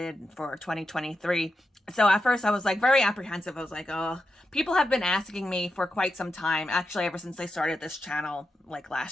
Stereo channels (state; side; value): normal; both; correlation 0.88